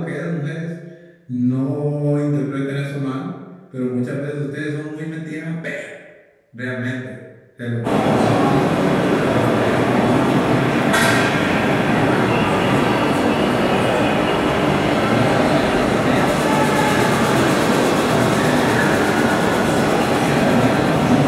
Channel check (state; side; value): identical; both; correlation 1.00